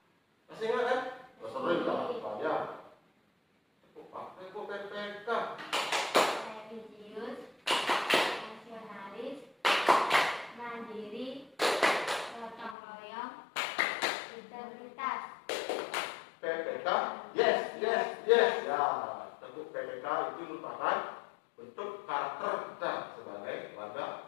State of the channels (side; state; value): right; drops out; at 12.8 s